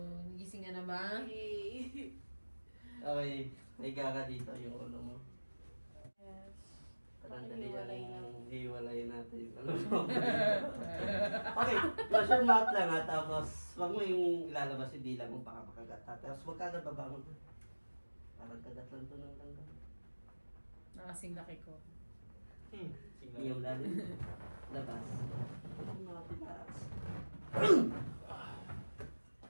Nagising ka na ba? Hey! Okay. Higa ka dito yung ulo mo. Yes. Parandali Hiwalay na. ang hiwalay natin yung ulo mo. Okay. Close your mouth lang ha. Tapos, wag mo yung ilalabas yung dila mo baka makagat ha. Tapos wag ka agad babangon ha. Parang kagat lang to ng langga. Nakasing laki ko. Yung lalim. Labas. Relax.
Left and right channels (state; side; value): inverted; both; correlation -1.00